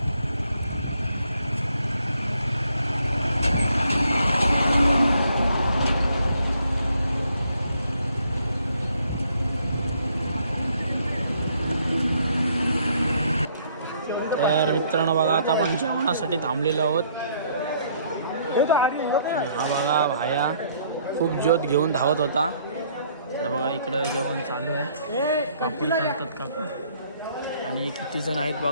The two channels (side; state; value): both; inverted; correlation -0.66